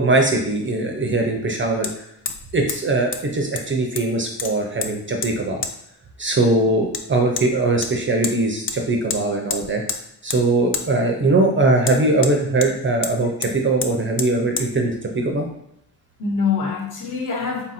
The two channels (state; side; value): normal; both; correlation 0.23